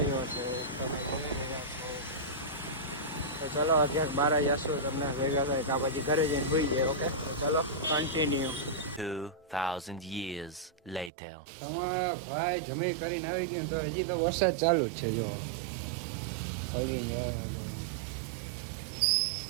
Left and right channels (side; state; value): left; drops out; at 11.1 s